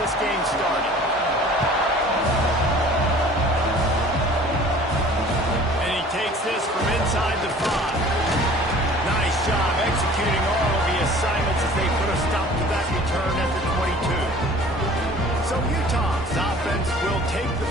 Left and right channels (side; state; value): both; normal; correlation 0.48